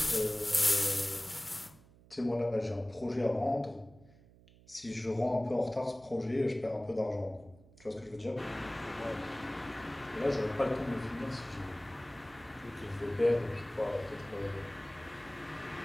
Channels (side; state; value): right; noise; hum, 24 dB below the sound